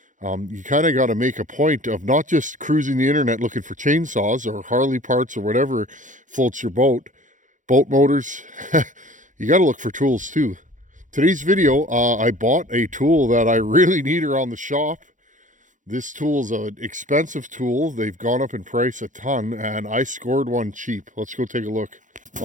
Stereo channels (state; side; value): late; left; 0.37 ms